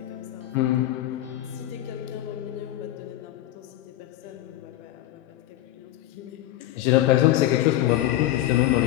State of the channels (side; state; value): right; quieter; 14.3 dB